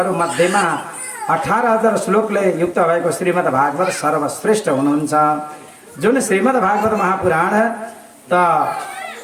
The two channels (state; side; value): identical; both; correlation 1.00